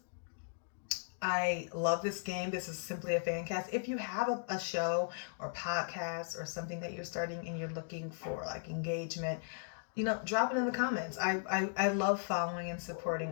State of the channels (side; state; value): right; silent; digital silence